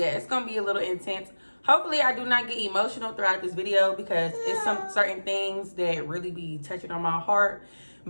it's gonna be a little intense. Hopefully I do not get emotional throughout this video because it's some certain things that really be touching on my heart.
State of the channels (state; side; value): inverted; both; correlation -1.00